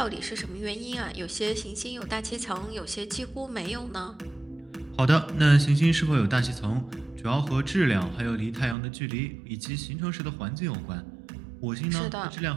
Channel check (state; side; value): drops out; left; at 8.8 s